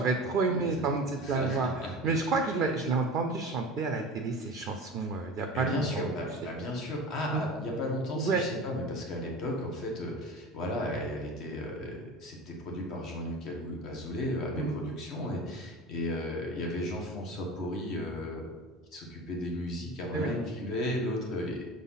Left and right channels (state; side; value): normal; both; correlation 0.34